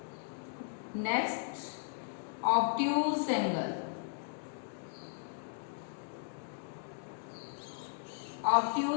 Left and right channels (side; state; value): right; silent; digital silence